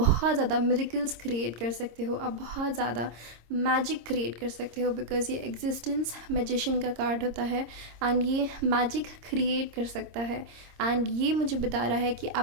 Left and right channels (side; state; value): left; late; 26 ms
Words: ज़्यादा मिरेकल्स क्रिएट कर सकते हो, आप बहुत ज़्यादा मैजिक क्रिएट कर सकते हो, बिकॉज़ ये एग्जिस्टेंस मैजिशियन का कार्ड होता है, एंड ये मैजिक क्रिएट कर सकता है। एंड ये मुझे बता रहा है कि